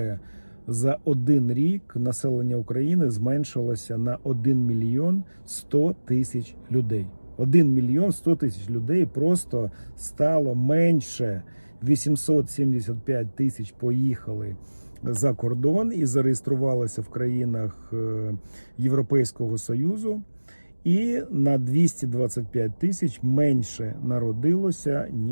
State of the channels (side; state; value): both; inverted; correlation -1.00